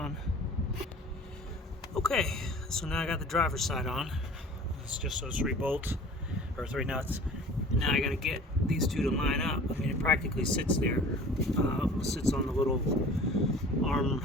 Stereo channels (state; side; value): normal; both; correlation 0.44